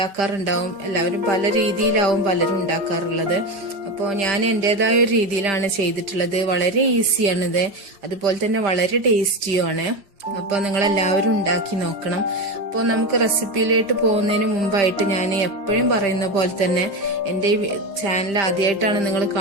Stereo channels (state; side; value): late; left; 5.1 ms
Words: എല്ലാവരും പല രീതിയിലാവും പലരും ഉണ്ടാക്കാറുള്ളത്. അപ്പോൾ ഞാൻ എന്റേതായ ഒരു രീതിയിലാണ് ചെയ്തിട്ടുള്ളത്. വളരെ ഈസിയാണിത്, അതുപോലെ തന്നെ വളരെ ടേസ്റ്റിയുമാണ്. അപ്പോൾ നിങ്ങൾ എല്ലാവരും ഉണ്ടാക്കി നോക്കണം. അപ്പോൾ നമുക്ക് റെസിപ്പിയിലേക്ക് പോകുന്നതിന് മുമ്പായിട്ട് ഞാൻ എപ്പോഴും പറയുന്ന പോലെ തന്നെ എൻ്റെ ഈ ചാനൽ ആദ്യമായിട്ടാണ് നിങ്ങൾ